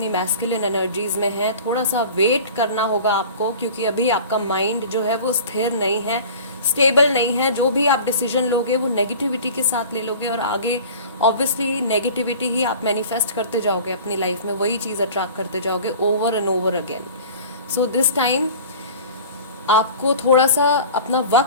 मैस्कुलिन एनर्जीज में हैं, थोड़ा सा वेट करना होगा आपको, क्योंकि अभी आपका माइंड जो है वो स्थिर नहीं है, स्टेबल नहीं है। जो भी आप डिसीजन लोगे वो नेगेटिविटी के साथ ले लोगे और आगे ऑब्वियसली नेगेटिविटी ही आप मैनिफेस्ट करते जाओगे अपनी लाइफ में, वही चीज़ अट्रैक्ट करते जाओगे over and over again. So this time आपको थोड़ा सा अपना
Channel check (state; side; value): inverted; both; correlation -0.41